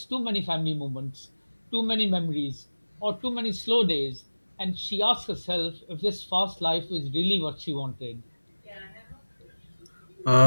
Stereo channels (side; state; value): both; inverted; correlation -1.00